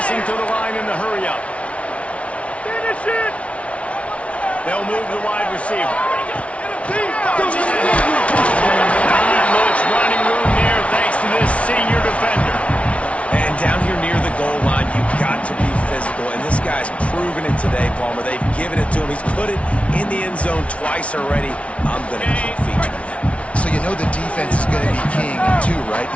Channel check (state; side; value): late; right; 0.063 ms